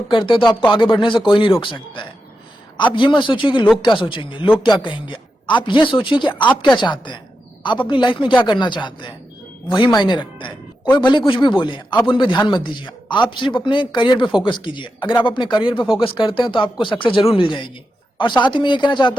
करते हैं तो आपको आगे बढ़ने से कोई नहीं रोक सकता है। आप ये मत सोचिए कि लोग क्या सोचेंगे, लोग क्या कहेंगे। आप ये सोचिए कि आप क्या चाहते हैं, आप अपनी लाइफ में क्या करना चाहते हैं, वही मायने रखता है। कोई भले कुछ भी बोले, आप उन पे ध्यान मत दीजिए, आप सिर्फ अपने करियर पे फोकस कीजिए। अगर आप अपने करियर पे फोकस करते हैं तो आपको सक्सेस जरूर मिल जाएगी। और साथ ही मैं ये कहना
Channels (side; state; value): both; normal; correlation 0.88